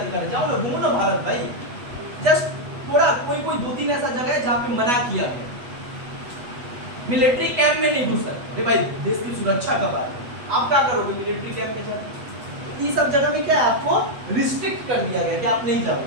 है। जाओ ना, घूमो ना भारत भाई। जस्ट थोड़ा कोई 2-3 ऐसा जगह है जहाँ पे मना किया गया, मिलिट्री कैंप में नहीं घुस सकते भाई, देश की सुरक्षा का बात है। आप क्या करोगे मिलिट्री कैंप में जाकर, ये सब जगह में क्या है, आपको रिस्ट्रिक्ट कर दिया गया कि आप नहीं जाओगे,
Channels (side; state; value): left; late; 8.2 ms